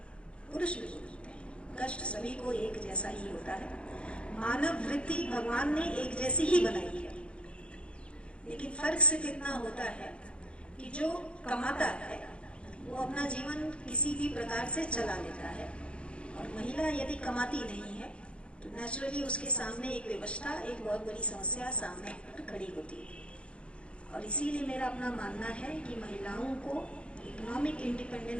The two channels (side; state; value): right; late; 0.060 ms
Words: पुरुष भी भुगतते हैं। कष्ट सभी को एक जैसा ही होता है। मानव वृत्ति भगवान ने एक जैसी ही बनाई है, लेकिन फर्क सिर्फ इतना होता है कि जो कमाता है वो अपना जीवन किसी भी प्रकार से चला लेता है, और महिला यदि कमाती नहीं है तो नेचुरली उसके सामने एक विवशता, एक बहुत बड़ी समस्या सामने खड़ी होती है। और इसीलिए मेरा अपना मानना है कि महिलाओं को इकोनॉमिक